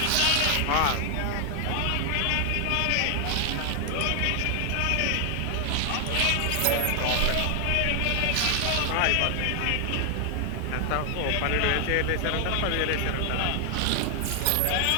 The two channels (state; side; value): different; both; correlation 0.00